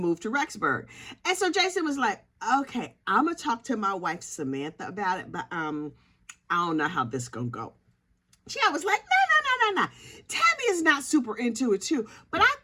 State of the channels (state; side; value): identical; both; correlation 1.00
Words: to Rexburg. And so Jason was like, okay, I'm going to talk to my wife, Samantha, about it, but I don't know how this going to go. Chad was like, no. Tammy is not super into it too, but I